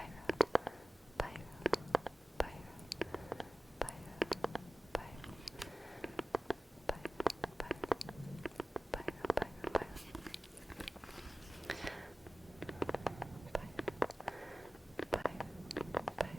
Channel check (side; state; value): both; normal; correlation 0.94